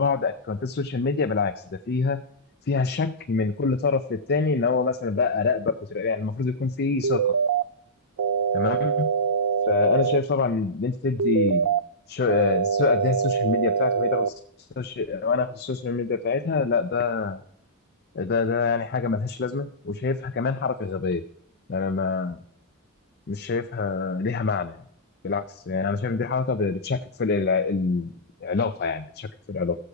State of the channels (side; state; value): both; normal; correlation -0.15